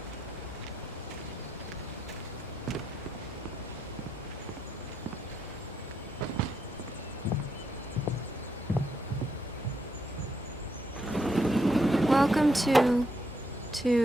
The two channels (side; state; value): both; normal; correlation 0.78